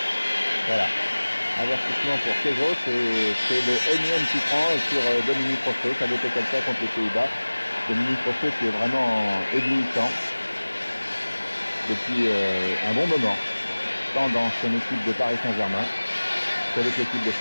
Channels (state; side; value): inverted; both; correlation -1.00